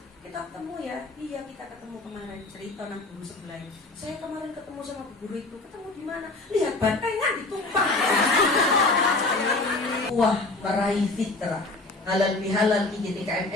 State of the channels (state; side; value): quieter; right; 3.1 dB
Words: Kita ketemu ya? Iya kita ketemu kemarin. Cerita nang guru sebelah. Saya kemarin ketemu sama Bu Guru itu. Ketemu di mana? Lihat bantengan ditumpah. Wah, meraih fitrah. Halal bihalal